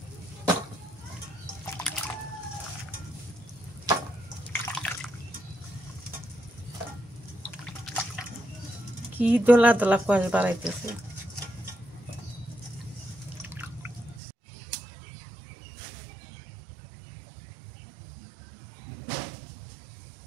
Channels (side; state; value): left; drops out; at 14.2 s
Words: কি দোলা দোলা কষ বাড়াইতেছে।